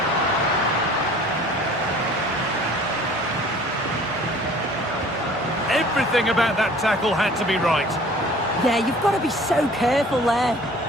Everything about that tackle had to be right. Yeah, you've got to be so careful there.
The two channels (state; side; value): normal; both; correlation 0.49